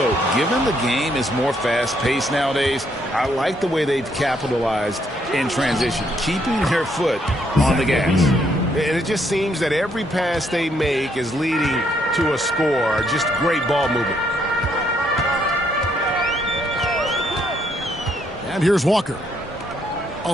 given the game is more fast-paced nowadays, I like the way they've capitalized in transition, keeping their foot on the gas. And it just seems that every pass they make is leading to a score. Just great ball movement. And here's Walker.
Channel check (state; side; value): normal; both; correlation 0.72